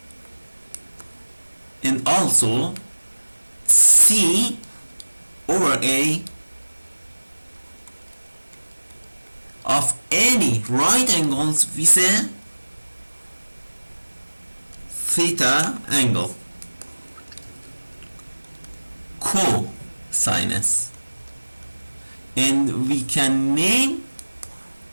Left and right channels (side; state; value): both; inverted; correlation -1.00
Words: and also C over A of any right angles with a theta angle, cosinus, and we can name